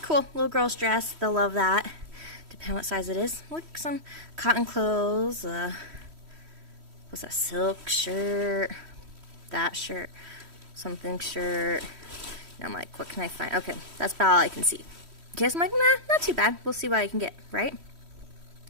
cool, little girl's dress. They'll love that. Depending on what size it is. Look, some cotton clothes. What's that? Silk shirt. That shirt. Something shirt. And I'm like, what can I find? Okay, that's about all I can see. Okay, so I'm like, nah, not too bad. We'll see what I can get, right?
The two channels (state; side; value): late; left; 3.1 ms